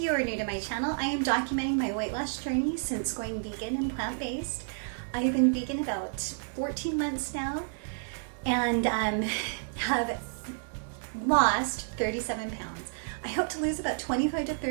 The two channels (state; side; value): silent; left; digital silence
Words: are new to my channel, I am documenting my weight loss journey since going vegan and plant-based. I've been vegan about 14 months now and have lost 37 pounds. I hope to lose about 25 to